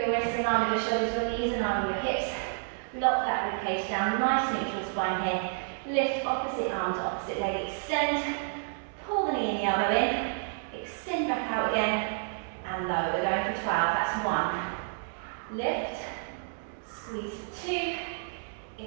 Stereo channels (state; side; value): silent; left; 58 dB below the other